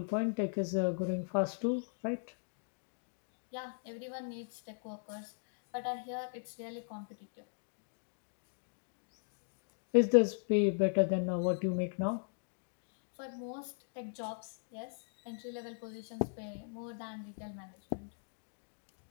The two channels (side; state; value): right; silent; digital silence